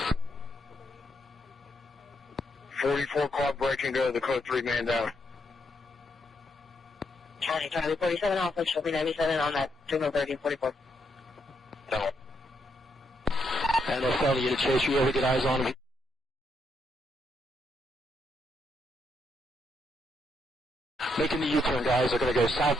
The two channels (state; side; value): normal; both; correlation 0.78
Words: 44 car breaking, go to the code 3 man down. County, Charlie 47 Alpha, show me 97 on that signal 1344. No. And a felony unit Chase, you able to get eyes on him? Making the U-turn, guys. They're going to go